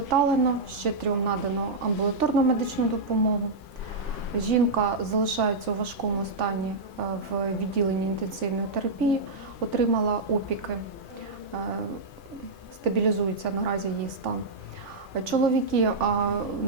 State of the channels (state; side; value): quieter; left; 3.2 dB